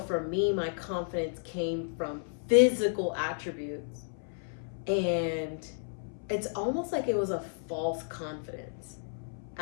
me, my confidence came from physical attributes. And it's almost like it was a false confidence.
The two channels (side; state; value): right; silent; 56 dB below the other